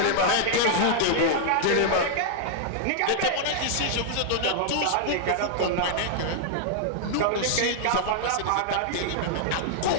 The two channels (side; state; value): both; different; correlation -0.01